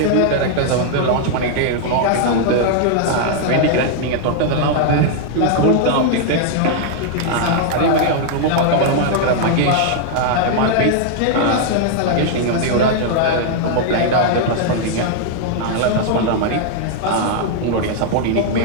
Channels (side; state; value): both; different; correlation -0.01